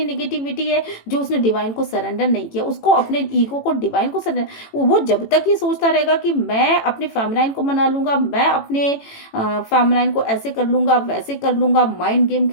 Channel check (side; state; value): right; late; 18 ms